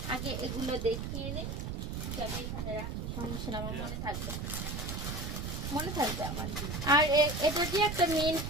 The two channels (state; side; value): noise; right; rumble, 4 dB below the sound